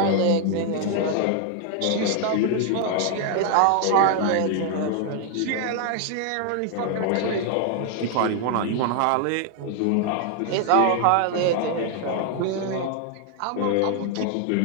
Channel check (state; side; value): different; both; correlation 0.00